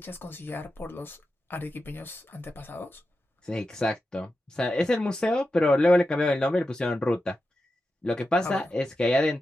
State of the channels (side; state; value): both; normal; correlation 0.90